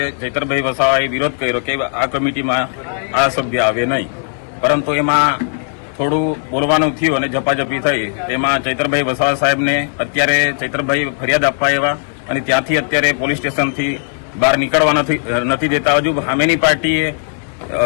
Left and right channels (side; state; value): right; silent; 68 dB below the other